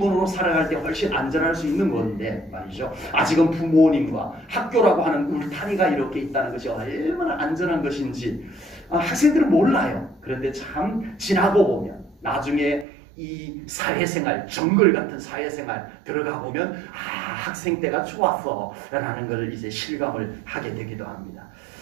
살아갈 때 훨씬 안전할 수 있는 건데 말이죠. 아직은 부모님과 학교라고 하는 울타리가 이렇게 있다는 것이 얼마나 안전한 것인지 학생들은 몰라요. 그런데 참 지나고 보면 나중에 이 사회생활, 정글 같은 사회생활 들어가 보면 학생 때가 좋았어 라는 걸 이제 실감을 하게 되기도 합니다.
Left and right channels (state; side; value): drops out; left; at 12.9 s